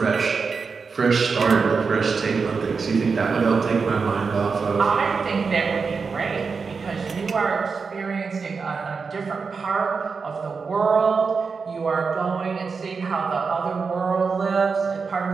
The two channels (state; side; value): quieter; left; 5.1 dB